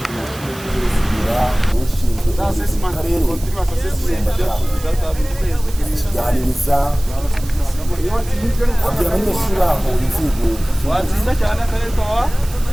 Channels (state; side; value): noise; right; hiss, 17 dB below the sound